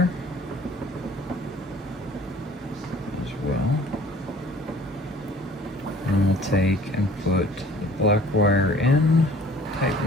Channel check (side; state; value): both; normal; correlation 0.51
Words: as well. And we'll take and put the black wire in,